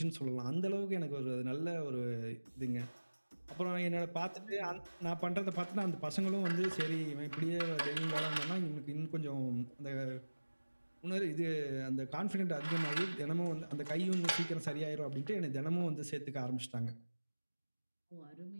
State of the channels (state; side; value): inverted; both; correlation -1.00